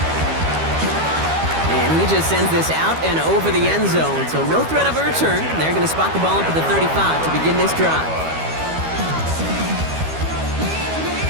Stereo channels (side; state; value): left; late; 12 ms